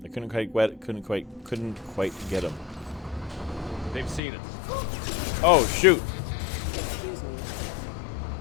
I couldn't quite get him. They've seen us. Oh shoot! Excuse me.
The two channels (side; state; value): right; drops out; at 4.2 s